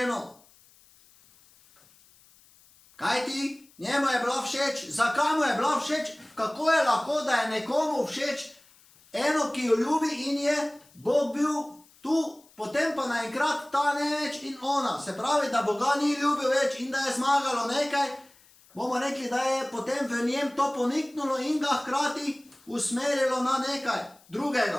Kaj ti? Njemu je bila všeč. Zakaj mu je bila všeč? Kako je lahko, da je nekomu všeč eno, ki jo ljubi in je Bog bil tu, potem pa naenkrat ta ne več in ona. Se pravi, da Boga ni ljubil več in da je zmagalo nekaj. Bomo rekli, da je potem v njem to poniknulo in ga hkrati usmerilo na nekaj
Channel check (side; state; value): left; noise; hiss, 28 dB below the sound